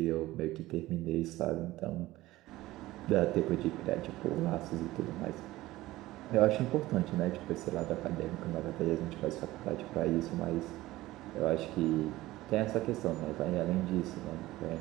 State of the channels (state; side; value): quieter; left; 17.3 dB